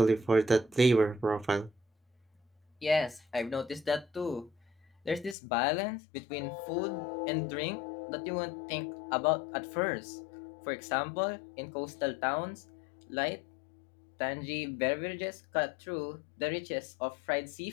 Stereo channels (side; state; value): right; drops out; at 5.4 s